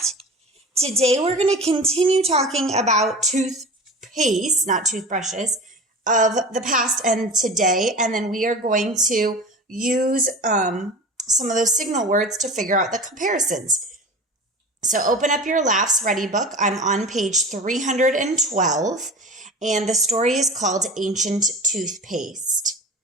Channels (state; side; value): normal; both; correlation 0.34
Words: Today we're going to continue talking about toothpaste, not toothbrushes, of the past and today. And then we are going to use some of those signal words to figure out the comparisons. So open up your LAFS Ready book. I'm on page 312, and the story is called Ancient Toothpaste.